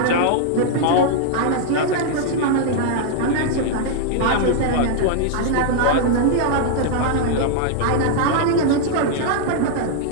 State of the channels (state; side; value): different; both; correlation 0.00